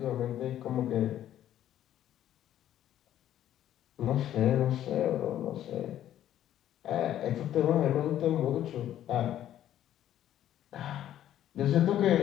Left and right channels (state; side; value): quieter; right; 11.7 dB